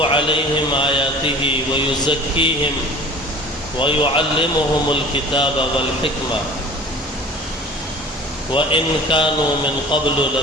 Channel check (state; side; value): normal; both; correlation 0.43